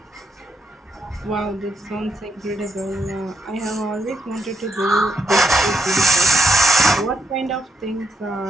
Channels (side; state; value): both; normal; correlation 0.80